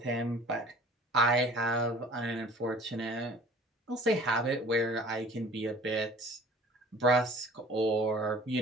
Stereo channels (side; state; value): both; normal; correlation 0.48